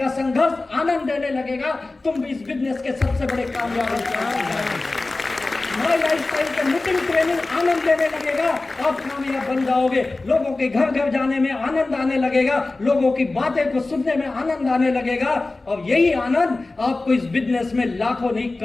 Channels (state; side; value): quieter; right; 3.2 dB